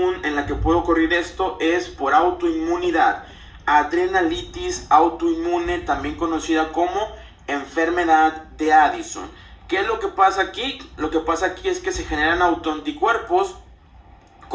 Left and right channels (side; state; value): both; identical; correlation 1.00